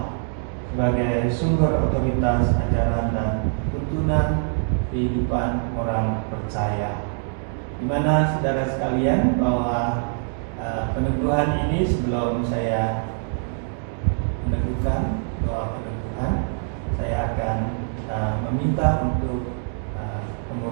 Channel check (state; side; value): silent; left; 58 dB below the other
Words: sebagai sumber otoritas ajaran dan tuntunan kehidupan orang percaya. Di mana saudara sekalian bahwa peneguhan ini sebelum saya meneguhkan doa peneguhan, saya akan meminta untuk